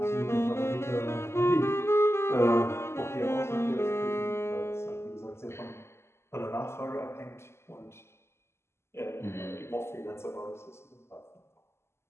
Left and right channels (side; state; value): right; late; 0.12 ms